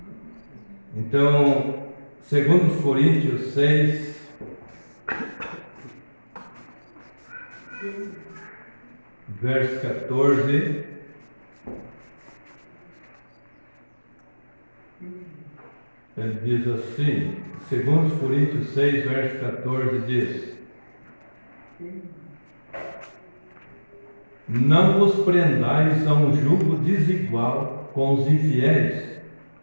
Então, segundo os Coríntios 6, verso 14, ele diz assim, segundo os Coríntios 6, verso 14, diz: não vos prendais a um jugo desigual com os infiéis,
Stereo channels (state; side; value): inverted; both; correlation -1.00